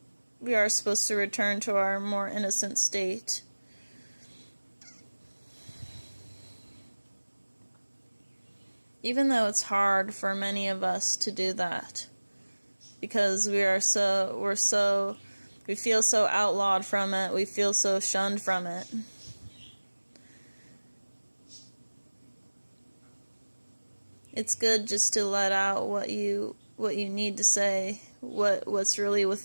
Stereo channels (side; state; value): both; inverted; correlation -1.00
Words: return to our more innocent state. Even though it's hard for many of us to do that, because we feel so outlawed from it, we feel so shunned from it. It's good just to let out what you need to say, what's really